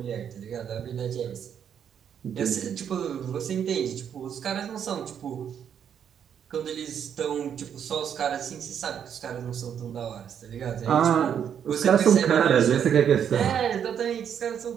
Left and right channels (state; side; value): quieter; left; 8.4 dB